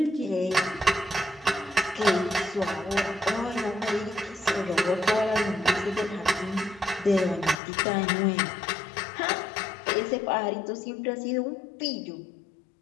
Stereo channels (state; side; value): drops out; right; at 7.6 s